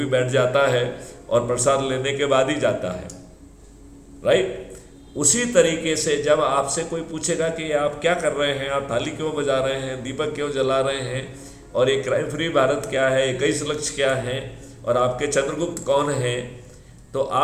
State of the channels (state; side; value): identical; both; correlation 1.00